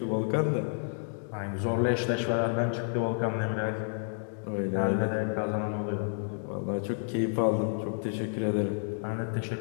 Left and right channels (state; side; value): silent; right; digital silence